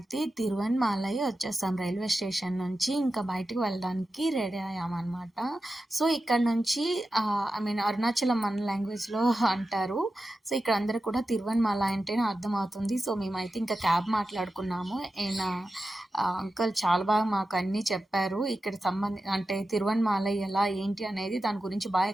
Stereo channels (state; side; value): normal; both; correlation 0.92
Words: తిరువణ్మలై వచ్చేసాం రైల్వే స్టేషన్ నుంచి. ఇంకా బయటికి వెళ్ళడానికి రెడీ అయ్యామనమాట. సో, ఇక్కడ నుంచి అరుణాచలం మన లాంగ్వేజ్‌లో అంటారు. సో, ఇక్కడ అందరూ కూడా తిరువణ్మల అంటేనే అర్థమవుతుంది. సో, మేమైతే ఇంకా క్యాబ్ మాట్లాడుకున్నాము. అంకుల్ చాలా బాగా మాకు అన్నీ చెప్పారు. ఇక్కడ అంటే తిరువణ్మలై ఎలా, ఏంటి అనేది దాని గురించి బాగా